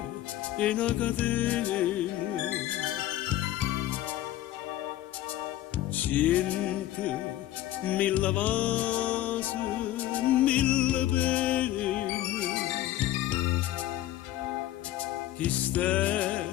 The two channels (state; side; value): quieter; right; 14.1 dB